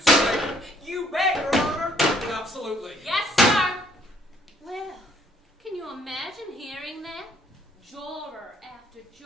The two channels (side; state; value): both; normal; correlation 0.64